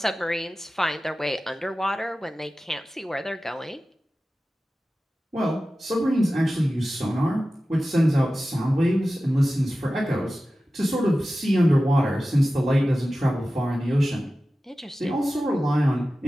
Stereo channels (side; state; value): both; normal; correlation 0.95